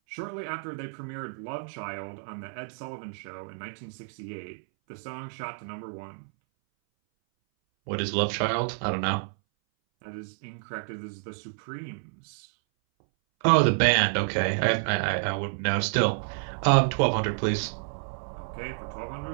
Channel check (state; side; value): silent; left; 59 dB below the other